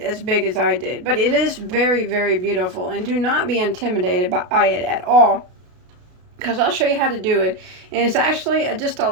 big as I did, but it is very, very beautiful, and do not be intimidated by it at all, because I'll show you how to do it. And it's actually just a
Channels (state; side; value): late; left; 33 ms